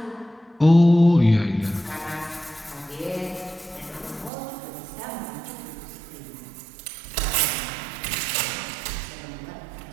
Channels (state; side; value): drops out; left; at 4.3 s